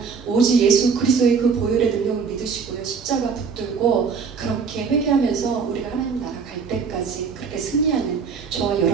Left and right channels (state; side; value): quieter; left; 5.7 dB